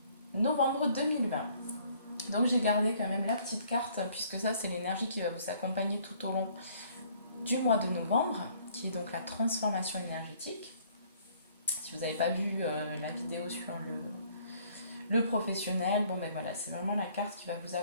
novembre 2020. Donc j'ai gardé quand même la petite carte puisque ça c'est l'énergie qui va vous accompagner tout au long du mois de novembre, qui est donc la transformation énergétique. Si vous n'avez pas vu la vidéo sur le professionnel, bon ben voilà, c'est vraiment la carte qui va vous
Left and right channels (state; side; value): inverted; both; correlation -0.60